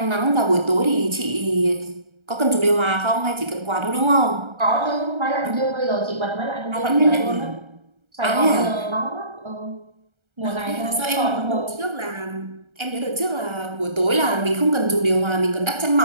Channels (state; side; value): late; left; 1.3 ms